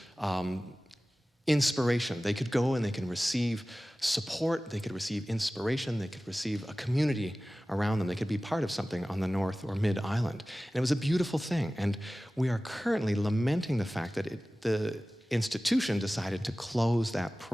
inspiration. They could go and they can receive support, they could receive inspiration, they could receive a community around them. They could be part of something on the North or Mid-Island. And it was a beautiful thing. And we are currently lamenting the fact that the institution decided to close that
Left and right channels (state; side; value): normal; both; correlation 0.97